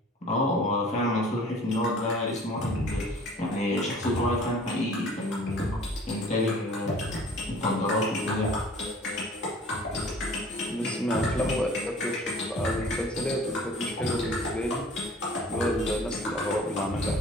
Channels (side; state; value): both; normal; correlation 0.48